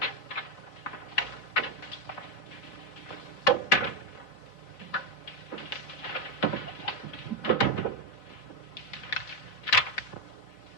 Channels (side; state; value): right; late; 4.6 ms